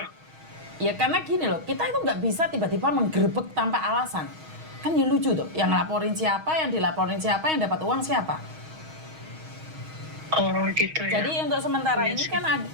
Ya karena gini loh, kita itu nggak bisa tiba-tiba menggerebek tanpa alasan. Kan ya lucu tuh, yang laporin siapa, yang dilaporin siapa, yang dapat uang siapa. Oh gitu ya. Jadi untuk sementara ini kan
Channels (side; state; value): left; late; 6.3 ms